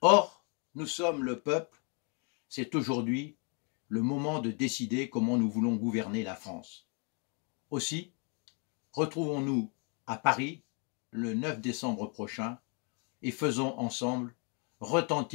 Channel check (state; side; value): quieter; right; 36.4 dB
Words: nous sommes le peuple, c'est aujourd'hui le moment de décider comment nous voulons gouverner la France. Aussi, retrouvons-nous à Paris le 9 décembre prochain et faisons ensemble